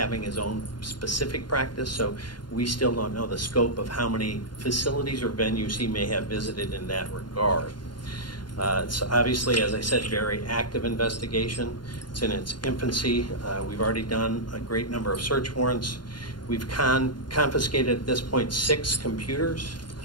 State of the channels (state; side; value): late; right; 0.71 ms